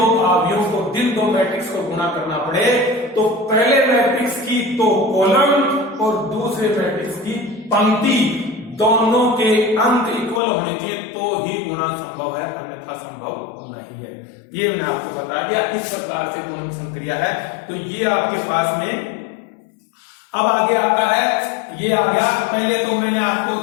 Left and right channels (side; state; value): right; drops out; at 10.4 s